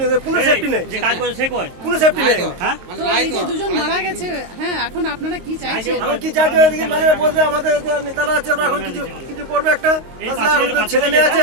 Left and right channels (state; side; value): late; left; 22 ms